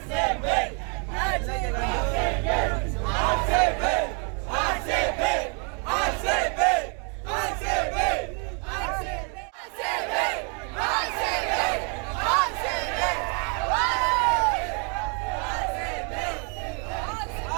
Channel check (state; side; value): quieter; left; 37.8 dB